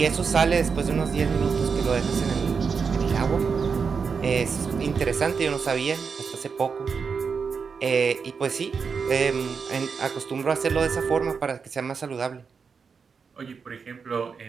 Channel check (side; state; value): left; quieter; 5.7 dB